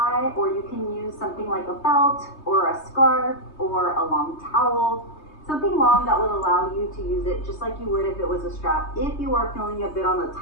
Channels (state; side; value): late; right; 3.2 ms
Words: or you can use something like a belt or a scarf or a long towel, something long that will allow you to use it just like you would if it was a strap, if you are feeling a bit on the